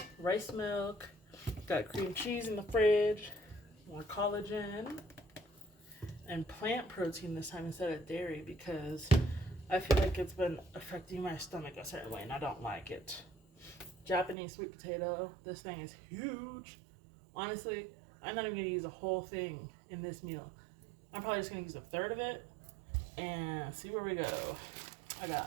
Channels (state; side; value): drops out; left; at 14.4 s